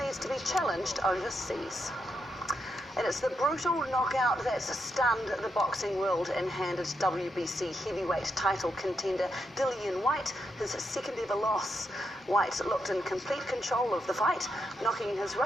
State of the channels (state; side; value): normal; both; correlation 0.82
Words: to be challenged overseas. And it's the brutal knockout that's stunned the boxing world and handed WBC heavyweight title contender Dillian Whyte his second ever loss. Whyte looked in complete control of the fight, knocking his